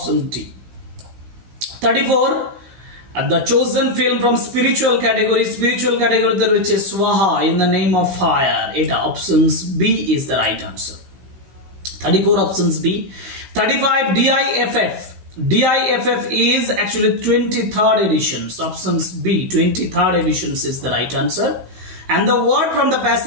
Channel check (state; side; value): late; left; 15 ms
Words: D. 34. The chosen film from spiritual category তে রয়েছে Swaha in the name of fire. এটা options B is the right answer. 34 options B. 35 DIFF is actually 23rd editions. Options B 23rd editions is the right answer. And the word from the